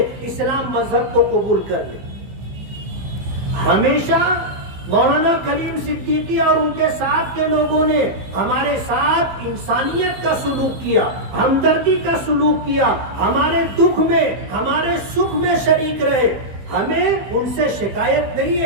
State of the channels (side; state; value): left; late; 15 ms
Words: اسلام مذہب کو قبول کر لیں۔ ہمیشہ مولانا کلیم صدیقی اور ان کے ساتھ کے لوگوں نے ہمارے ساتھ انسانیت کا سلوک کیا، ہمدردی کا سلوک کیا، ہمارے دکھ میں ہمارے سکھ میں شریک رہے۔ ہمیں ان سے شکایت نہیں